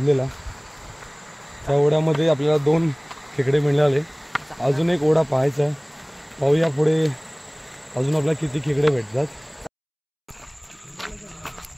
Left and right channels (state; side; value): identical; both; correlation 1.00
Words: त्या ओढ्यामध्ये आपल्याला 2 खेकडे मिळाले. अजून एक ओढा पाहायचा, पाहूया पुढे अजून आपल्याला किती खेकडे भेटतात.